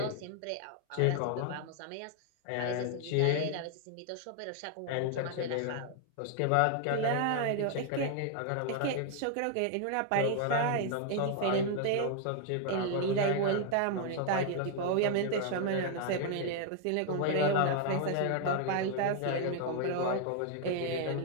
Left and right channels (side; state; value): both; different; correlation 0.00